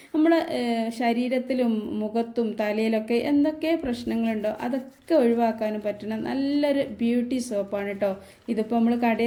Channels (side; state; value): both; identical; correlation 1.00